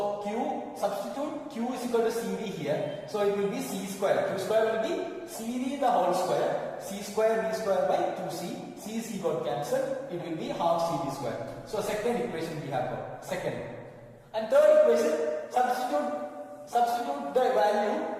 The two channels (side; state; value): both; identical; correlation 1.00